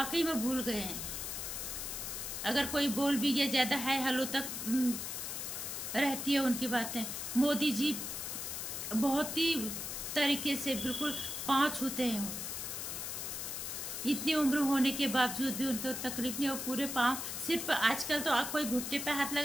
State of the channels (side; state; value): left; noise; hiss, 5 dB below the sound